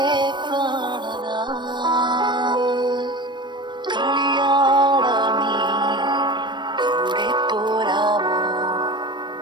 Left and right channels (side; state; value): left; late; 0.22 ms